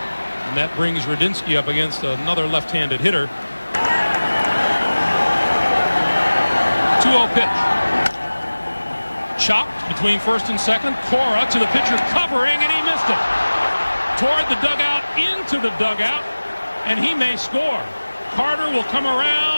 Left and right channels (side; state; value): both; inverted; correlation -1.00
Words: And that brings Radinsky up against another left-handed hitter. 2-0 pitch. Chopped between first and second. Cora to the pitcher covering, and he missed it. Toward the dugout, into the dugout, and he may score. Carter will come